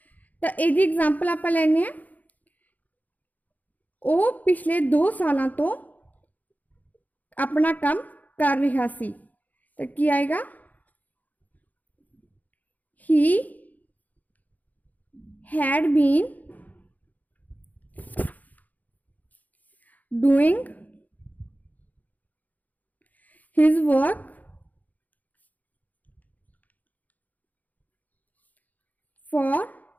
तो ये एग्जाम्पल आप लेने वो पिछले 2 सालों तो अपना काम कर रहा सी, तो की आएगा he had been doing his work for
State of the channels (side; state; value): right; late; 0.079 ms